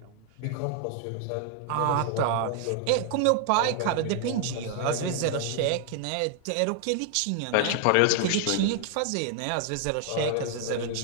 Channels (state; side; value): different; both; correlation 0.00